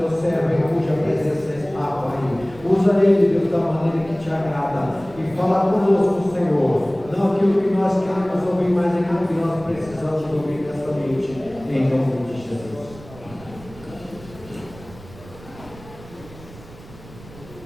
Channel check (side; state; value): right; noise; rumble, 19 dB below the sound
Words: servo, em cuja presença está, Pai. Usa ele, Deus, da maneira que te agrada. E fala conosco, Senhor. Não aquilo que nós queremos ouvir, mas aquilo que nós precisamos ouvir nesta noite. Em nome de Jesus.